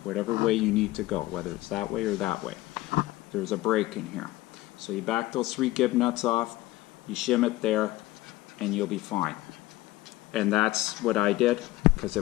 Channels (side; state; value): right; quieter; 17.8 dB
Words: whatever way you need to go, whether it's that way or that way. There's a break in here. So you back those 3 gib nuts off, you shim it there, and you'll be fine. And that's what I did, because